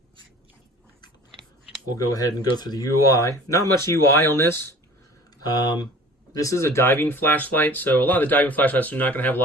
we'll go ahead and go through the UI. Not much UI on this. This is a diving flashlight, so a lot of the diving flashlights are not going to have a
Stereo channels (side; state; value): both; normal; correlation 0.45